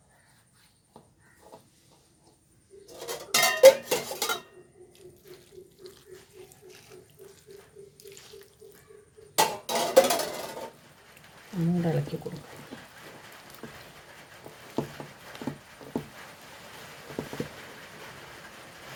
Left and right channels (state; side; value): identical; both; correlation 1.00